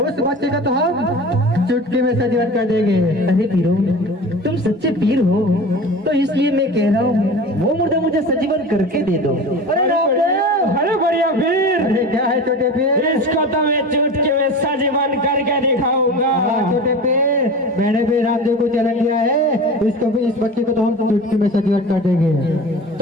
उस बच्चे का तो हम चुटकी में सजीवन कर देंगे। अरे पीरो, तुम सच्चे पीर हो तो इसलिए मैं कह रहा हूँ वो मुर्दा मुझे सजीवन करके दे दो। अरे रामदेव, अरे बढ़िया पीर। अरे क्या है छोटे पीर? इसको तो मैं चुटकी में सजीवन करके दिखाऊंगा। छोटे पीर, मैंने भी रामदेव को चैलेंज दिया है, इसको भी, इस बच्चे को तो हम चुटकी में सजीवन कर देंगे।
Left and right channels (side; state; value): both; normal; correlation 0.34